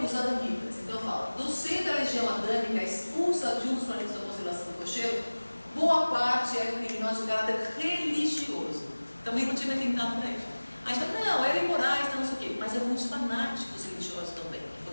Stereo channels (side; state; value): both; inverted; correlation -1.00